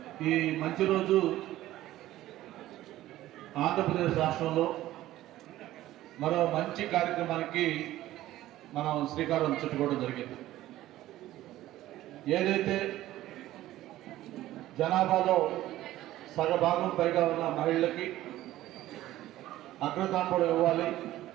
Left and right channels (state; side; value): quieter; left; 14.9 dB